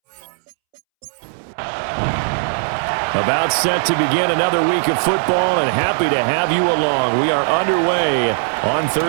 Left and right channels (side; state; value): left; silent; 67 dB below the other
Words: About set to begin another week of football, and happy to have you along. We are underway on